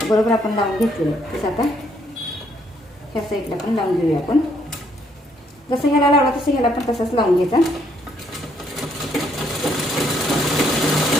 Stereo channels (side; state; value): both; normal; correlation 0.70